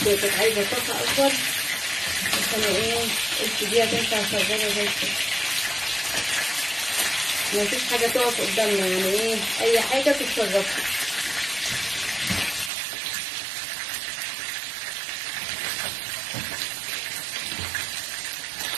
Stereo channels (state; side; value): drops out; left; at 12.7 s